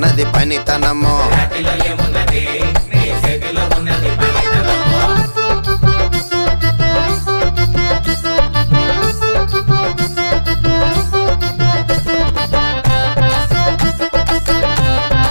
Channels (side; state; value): both; inverted; correlation -1.00